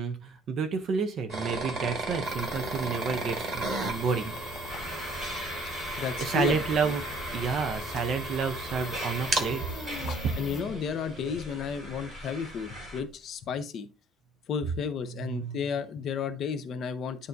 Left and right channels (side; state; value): both; normal; correlation 0.57